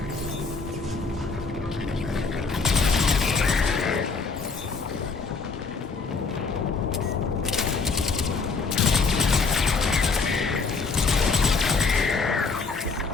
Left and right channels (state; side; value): quieter; right; 4.5 dB